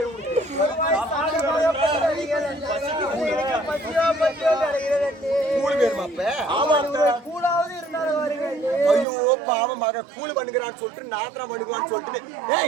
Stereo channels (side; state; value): left; drops out; at 9.1 s